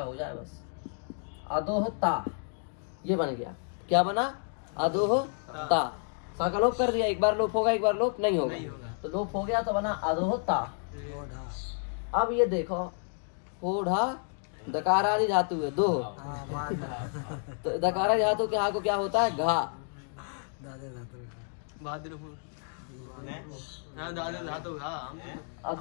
हो जाए बस। अधोह ता, ये बन गया। क्या बना? अधोह ता, सा का लोप कर दिया, एक बार लोप होगा एक बार लोप नहीं होगा। तो लोप हो गया तो बना अधोह ता। अब ये देखो होढ़ा दकारादि धातु है, दो। तो दकारादि धातु के हा को क्या होता है? घा।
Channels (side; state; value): right; silent; 57 dB below the other